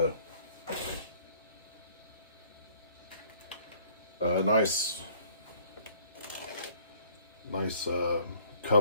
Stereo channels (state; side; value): inverted; both; correlation -0.56